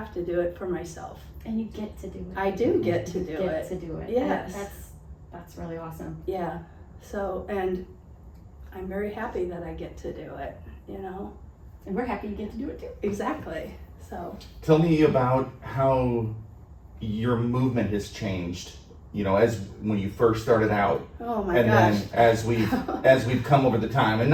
to do it for myself. And you get to do it. I do get to do You it. get to do it. Yes. And that's really awesome. Yeah. So, and I'm very happy that I get to do it, And we're happy you get to do it too. Exactly. So, Tell me about how your movement has changed, as when you first started out. oh my And gosh. then as we've come over the time, and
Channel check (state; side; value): identical; both; correlation 1.00